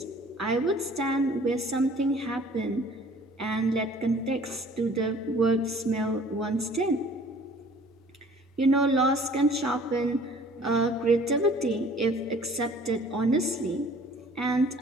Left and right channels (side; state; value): both; normal; correlation 0.52